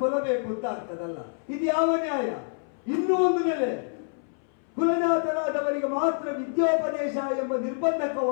ಕೊಲ್ಲಬೇಕು ಅಂತ ಆಗ್ತದಲ್ಲ. ಇದು ಯಾವ ನ್ಯಾಯ? ಇನ್ನೂ ಒಂದು ನೆಲೆ, ಕುಲಜಾತರಾದವರಿಗೆ ಮಾತ್ರ ವಿದ್ಯೋಪದೇಶ ಎಂಬ ನಿರ್ಬಂಧಕ್ಕೆ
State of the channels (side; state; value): right; silent; 60 dB below the other